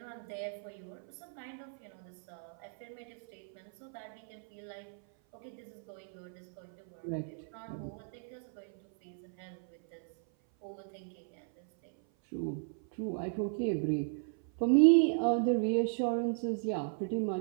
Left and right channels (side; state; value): left; silent; 54 dB below the other